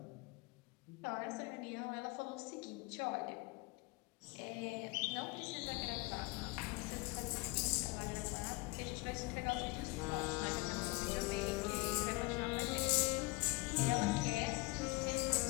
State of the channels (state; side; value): quieter; right; 25.1 dB